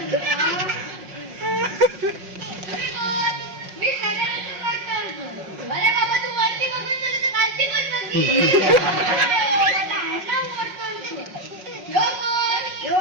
मी सगळ्यांना करतो. अरे बाबा तू वरती बघून झालं तर खालती पण बघ.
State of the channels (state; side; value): late; left; 5.5 ms